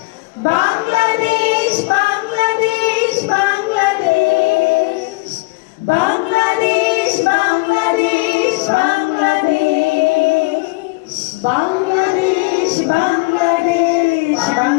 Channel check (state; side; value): quieter; right; 25.6 dB